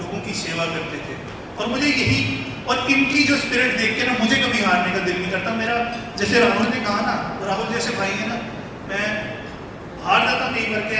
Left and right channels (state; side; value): identical; both; correlation 1.00